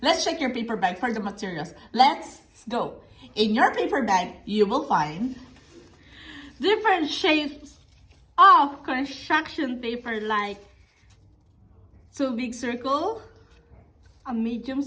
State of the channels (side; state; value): both; identical; correlation 1.00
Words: let's check your paper bag for the materials. Let's go. In your paper bag, you will find Different shapes of construction paper like two big circle, a medium